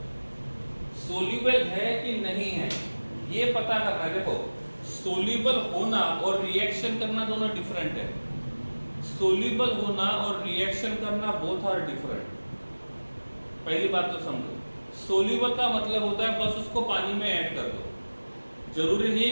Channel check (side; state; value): both; inverted; correlation -1.00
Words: सोल्यूबल है कि नहीं है ये पता करना है। देखो, सोल्यूबल होना और रिएक्शन करना दोनों डिफरेंट है। सोल्यूबल होना और रिएक्शन करना बोथ आर डिफरेंट। पहली बात तो समझो, सोल्यूबल का मतलब होता है बस उसको पानी में ऐड कर दो, जरूरी नहीं